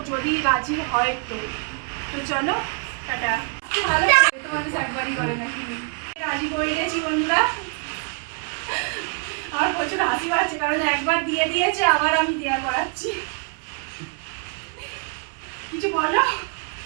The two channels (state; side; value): quieter; left; 37.5 dB